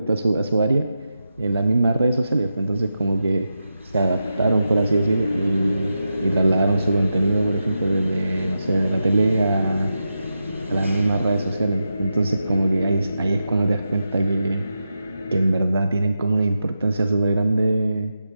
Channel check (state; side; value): inverted; both; correlation -0.89